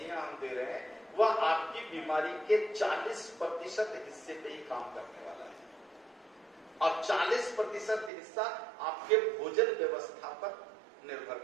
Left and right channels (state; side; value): drops out; left; at 8.1 s